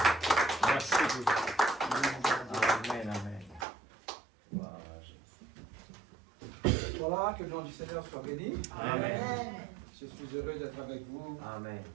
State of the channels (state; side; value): drops out; left; at 3.7 s